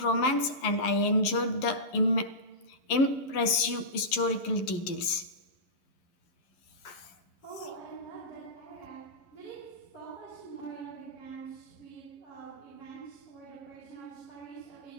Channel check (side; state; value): right; late; 11 ms